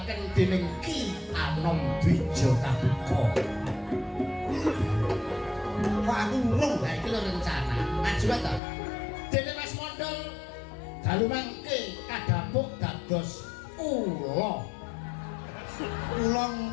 dening Ki Anom Dwija Kabuka. Kok aku urung? Lah iki lho rencana. Maju ta. Dene Mas Mondol dalu mangke kadhapuk dados Kula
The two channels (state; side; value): drops out; right; at 8.6 s